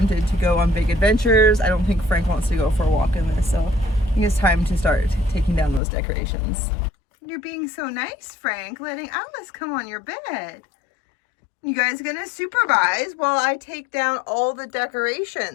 to go on big adventures. I don't think Frank wants to go for a walk in this, so I think it's time to start taking down those decorations. You're being so nice, Frank, letting Alice come on your bed. You guys gonna supervise while I take down all the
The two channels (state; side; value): drops out; right; at 5.8 s